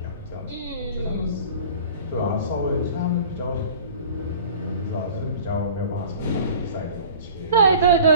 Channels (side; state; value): both; inverted; correlation -0.44